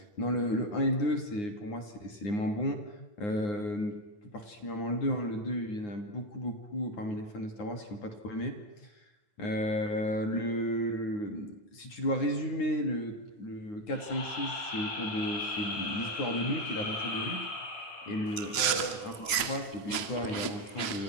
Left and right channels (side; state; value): right; late; 9.1 ms